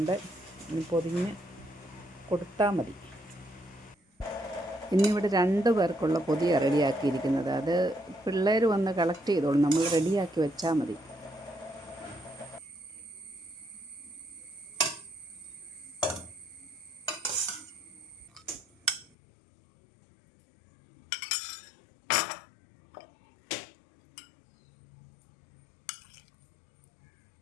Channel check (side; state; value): right; drops out; at 19.1 s